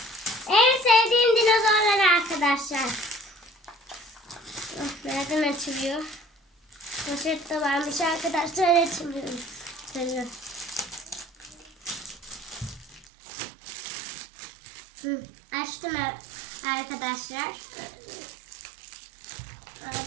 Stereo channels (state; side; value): drops out; left; at 13.1 s